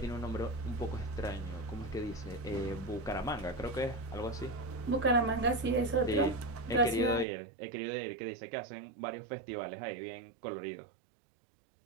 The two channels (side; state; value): left; drops out; at 7.2 s